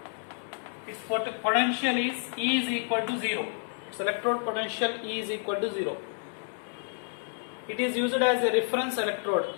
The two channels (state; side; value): silent; right; 58 dB below the other